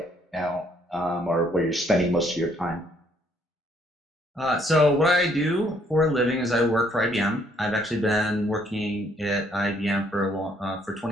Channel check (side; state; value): both; normal; correlation 0.67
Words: now, or where you're spending most of your time. So what I do for a living is I work for IBM. I've actually been working at IBM for